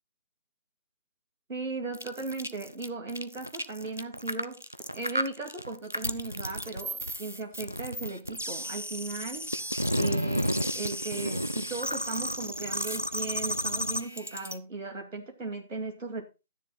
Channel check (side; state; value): both; inverted; correlation -0.50